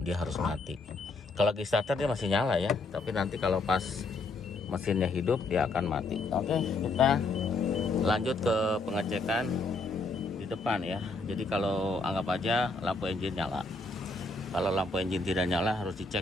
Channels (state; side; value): quieter; right; 3.4 dB